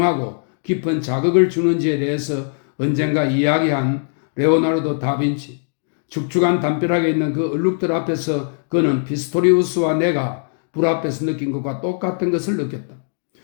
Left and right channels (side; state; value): right; silent; 64 dB below the other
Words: 깊은 자극을 주는지에 대해서 언젠가 이야기한 레오나르도 다빈치. 축축한 담벼락에 있는 그 얼룩들 앞에서 그는 피스토리우스와 내가 불 앞에서 느낀 것과 똑같은 것을 느꼈다.